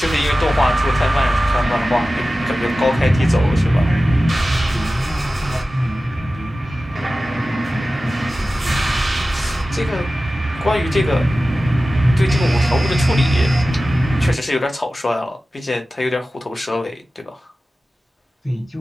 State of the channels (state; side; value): normal; both; correlation 0.95